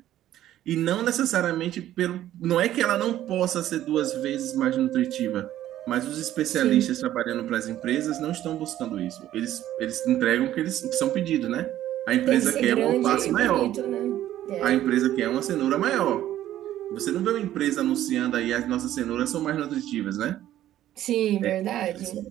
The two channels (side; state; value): left; quieter; 12.9 dB